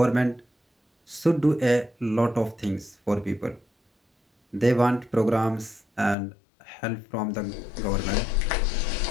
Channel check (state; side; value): drops out; right; at 6.2 s